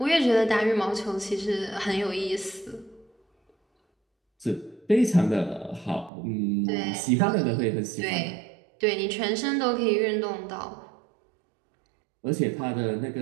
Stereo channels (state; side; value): drops out; left; at 6.1 s